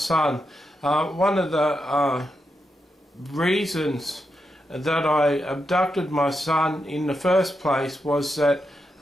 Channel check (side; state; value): both; normal; correlation 0.85